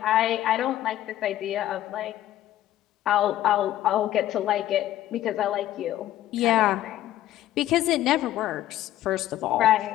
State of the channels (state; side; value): quieter; right; 13.3 dB